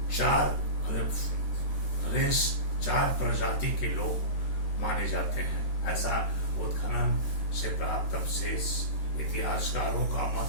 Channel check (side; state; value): right; late; 13 ms